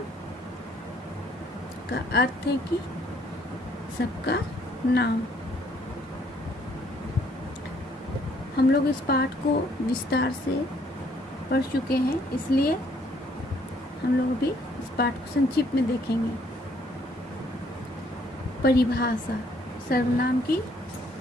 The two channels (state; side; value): normal; both; correlation 0.65